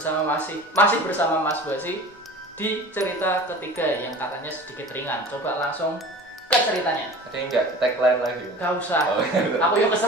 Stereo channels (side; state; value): both; normal; correlation 0.39